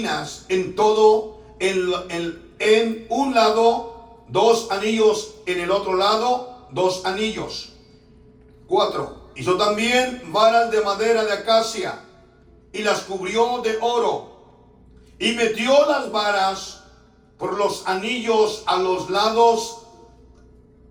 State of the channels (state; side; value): identical; both; correlation 1.00